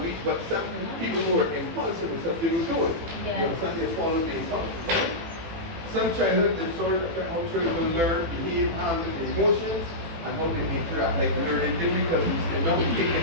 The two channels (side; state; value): left; late; 18 ms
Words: But some people who are impulsive and stuff, they will do it. Yeah. You understand? They follow the impulse, right? Some childhood disorders affect how children will learn, behave, handle their emotions, and how they interact, like learning difficulties, and not